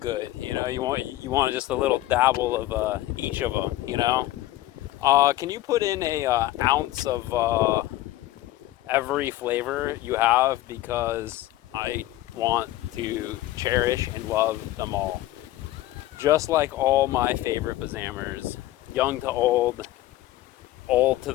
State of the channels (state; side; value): quieter; right; 15.8 dB